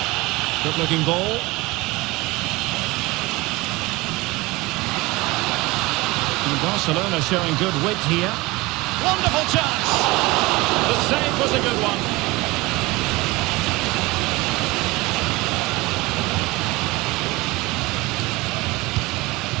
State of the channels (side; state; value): left; quieter; 22.0 dB